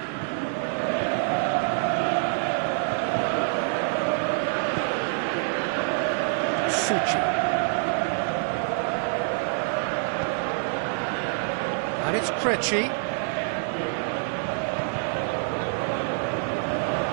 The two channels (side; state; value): left; silent; 61 dB below the other